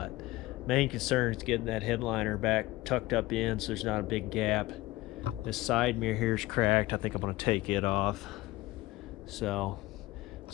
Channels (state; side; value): quieter; right; 19.0 dB